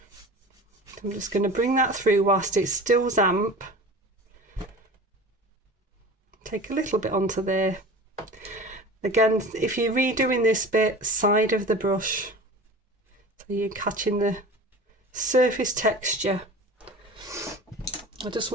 I'm just going to bring that through whilst it's still damp. Take a little bit onto there. Again, if you're redoing this bit, side of the brush, so you're catching the surface texture. I just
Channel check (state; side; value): normal; both; correlation 0.37